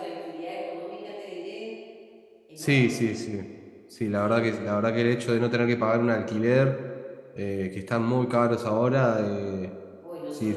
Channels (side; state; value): both; identical; correlation 1.00